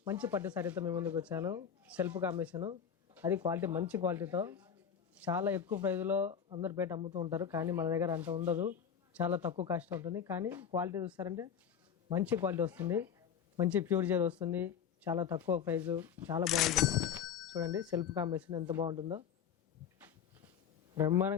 మంచి పట్టు సారీతో మీ ముందుకు వచ్చాను. సెల్ఫ్ కాంబినేషను, అది క్వాలిటీ, మంచి క్వాలిటీతో చాలా ఎక్కువ ప్రైజ్లో అందరు బయట అమ్ముతూ ఉంటారు. కానీ మన దగ్గర అంత ఉండదు, చాలా తక్కువ కాస్ట్ ఉంటుంది. కానీ క్వాలిటీ చూస్తారంటే మంచి క్వాలిటీ వస్తుంది, మంచి ప్యూర్ జెల్ వస్తుంది, చాలా తక్కువ ప్రైజు, చాలా బాగుంటుంది. చూడండి సెల్ఫ్ కాంబినేషన్ ఎంత బాగుంటుందో,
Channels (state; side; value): quieter; right; 7.8 dB